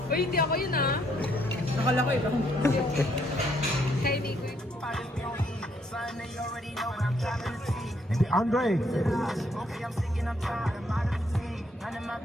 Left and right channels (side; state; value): both; normal; correlation 0.70